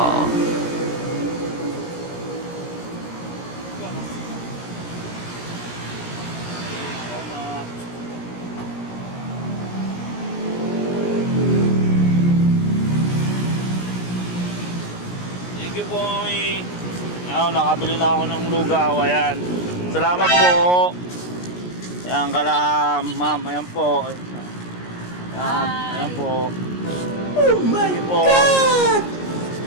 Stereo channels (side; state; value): right; late; 17 ms